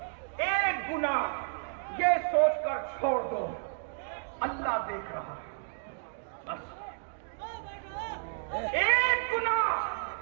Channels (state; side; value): silent; left; digital silence